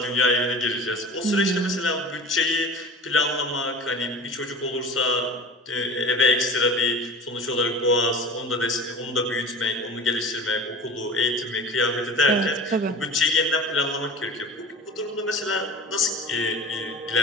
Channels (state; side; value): normal; both; correlation 0.37